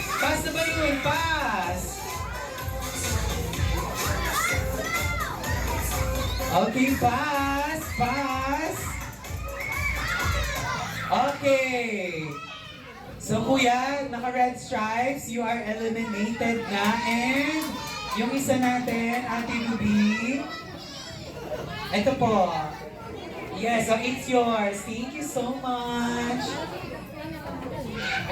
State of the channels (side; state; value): both; identical; correlation 1.00